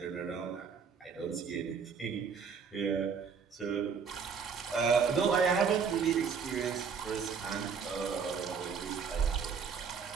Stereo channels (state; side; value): quieter; left; 6.1 dB